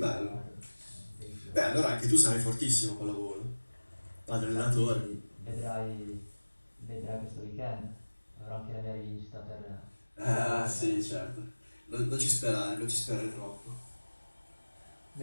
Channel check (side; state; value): both; inverted; correlation -1.00